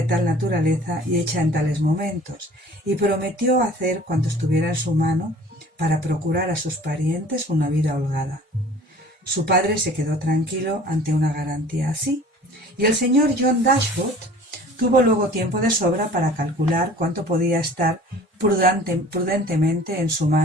tal naturaleza y hecha en tales momentos, y prometió hacer cuanto estuviera en su mano para procurar a sus parientes una vida holgada. Su padre se quedó tranquilo ante una garantía así, y el señor John Dashwood tuvo luego tiempo de sobra para calcular cuánto podía estar prudentemente en su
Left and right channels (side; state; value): both; normal; correlation 0.47